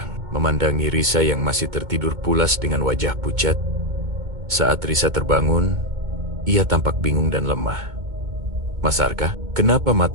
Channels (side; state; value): left; late; 2.2 ms